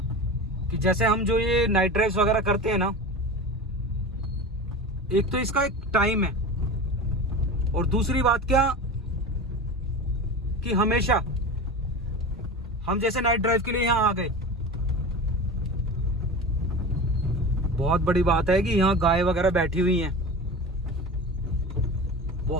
कि जैसे हम जो ये नाइट ड्राइव्स वगैरह करते हैं ना, एक तो इसका एक टाइम है, और दूसरी बात क्या कि हमेशा हम जैसे नाइट ड्राइव के लिए यहां आ गए, बहुत बड़ी बात है कि यहाँ गाय वगैरह बैठी हुई हैं।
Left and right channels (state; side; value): normal; both; correlation 0.30